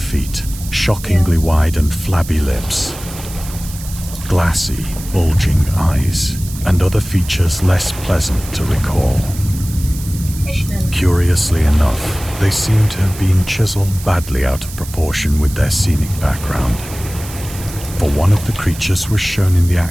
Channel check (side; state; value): right; noise; hiss, 14 dB below the sound